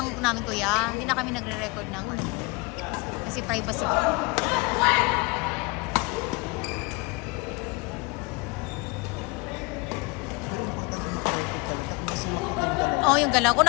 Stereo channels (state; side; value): quieter; right; 27.0 dB